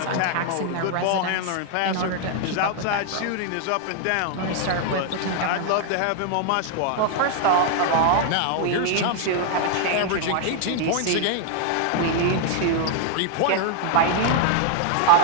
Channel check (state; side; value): different; both; correlation 0.00